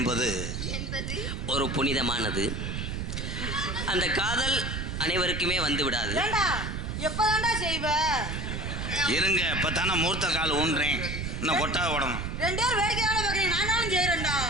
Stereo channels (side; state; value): right; noise; rumble, 4 dB below the sound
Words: ஒரு புனிதமானது. அந்த காதல் அனைவருக்குமே வந்து விடாது. எப்பதான்டா செய்வ? இருங்க இப்பதானே மூர்த்த கால் ஊன்றேன். இன்னும் கொட்டா ஓடணும். 2 பேர் வேடிக்கையான பாக்குறீங்க. நானும் செய்யறேன்டா.